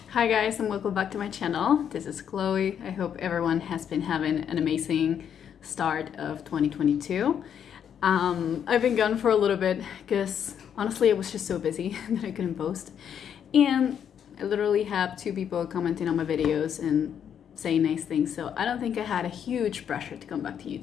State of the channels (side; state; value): right; quieter; 8.6 dB